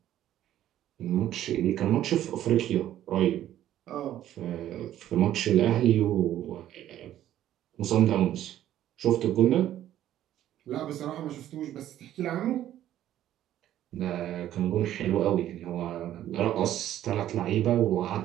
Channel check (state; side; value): quieter; left; 12.3 dB